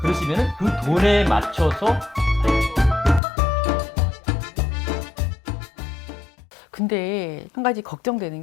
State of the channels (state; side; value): drops out; right; at 3.2 s